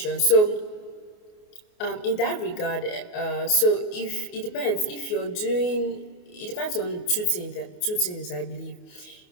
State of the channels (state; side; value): late; right; 28 ms